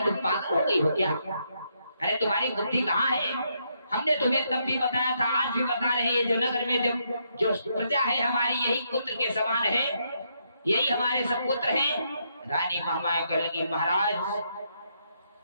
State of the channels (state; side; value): inverted; both; correlation -0.77